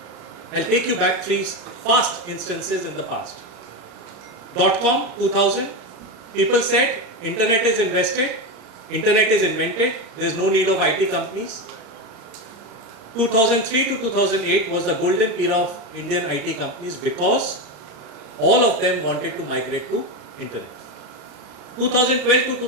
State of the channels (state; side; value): late; left; 34 ms